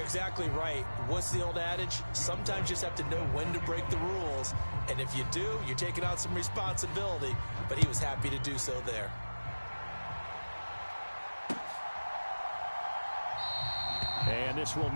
exactly right. What's the old adage? Sometimes you just have to know when to break the rules. And if you do, you're taking on some responsibility. But he was happy to do so there. And this will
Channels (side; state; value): both; inverted; correlation -1.00